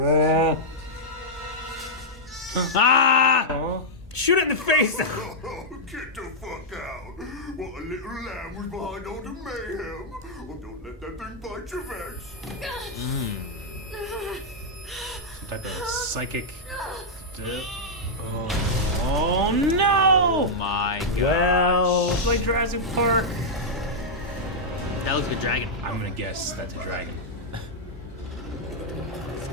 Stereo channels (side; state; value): both; normal; correlation -0.06